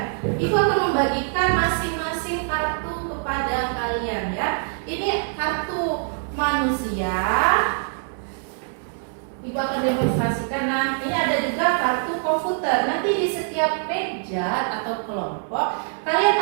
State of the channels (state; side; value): silent; left; 58 dB below the other